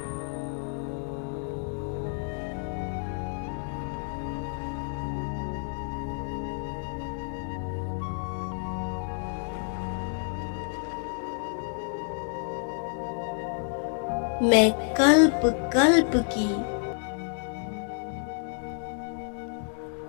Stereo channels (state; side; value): silent; right; 57 dB below the other